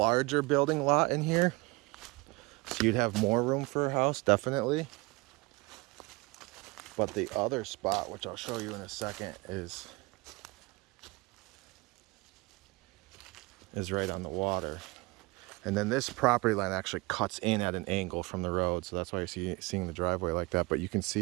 building lot in here. So you'd have more room for a house, definitely. But the other spot, which I'll show you in a second, is right on the water. And then this property line actually cuts in at an angle from the road. So that's why you're seeing the driveway like that. But you can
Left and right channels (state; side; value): quieter; left; 25.0 dB